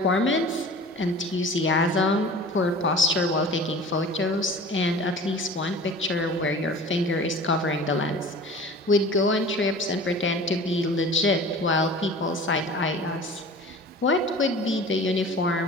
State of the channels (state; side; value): normal; both; correlation 0.41